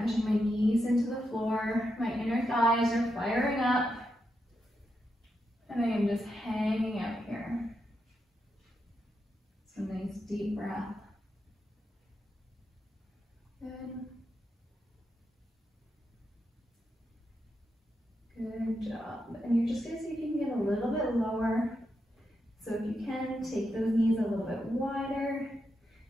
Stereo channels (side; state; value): both; normal; correlation 0.85